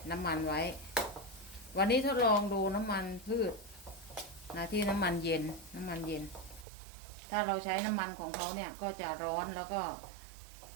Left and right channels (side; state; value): left; drops out; at 6.7 s